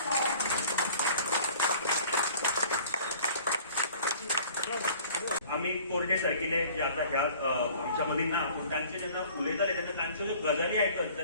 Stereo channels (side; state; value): both; inverted; correlation -0.50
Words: आम्ही कोरडे सारखिले जे आता ह्या आमच्या मधील ना त्यांचे जेन्ना उलयताले तेन्ना तांच्यो ज्यो गजाली आयकत